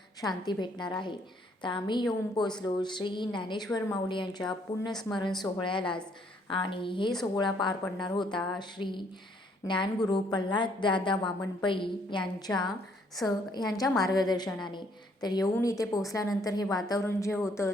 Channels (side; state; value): both; normal; correlation 0.67